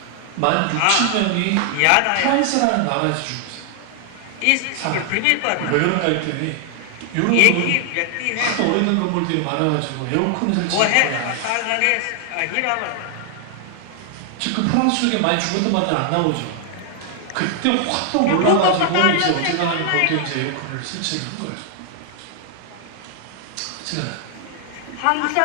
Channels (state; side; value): different; both; correlation 0.00